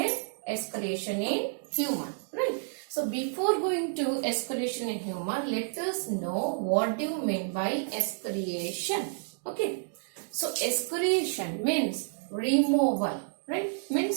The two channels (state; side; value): silent; left; digital silence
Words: Escalation in human, right? So before going to escalation in human, let us know what do you mean by escalation. Okay, so escalation means removal, right?